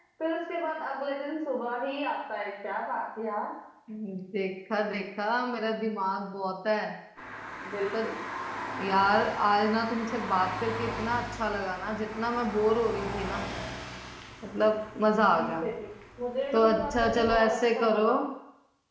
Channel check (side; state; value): both; identical; correlation 1.00